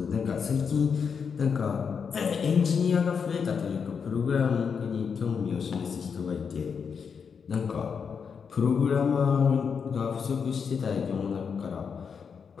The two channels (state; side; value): quieter; right; 6.3 dB